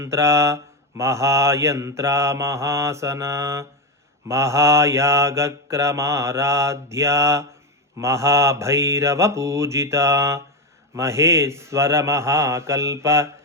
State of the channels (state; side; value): normal; both; correlation 0.12